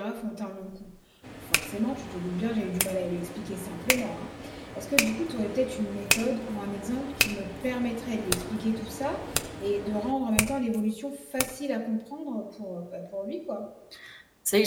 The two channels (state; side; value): identical; both; correlation 1.00